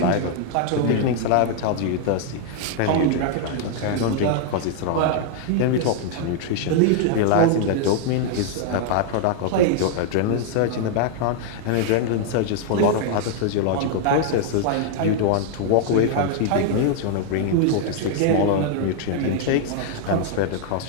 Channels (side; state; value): both; different; correlation 0.00